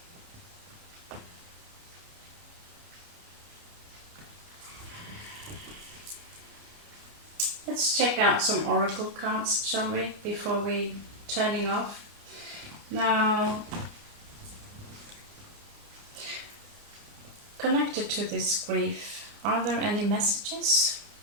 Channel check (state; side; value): late; left; 29 ms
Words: Let's check out some oracle cards, shall we, before we turning off. Now, connected to this grief, are there any messages?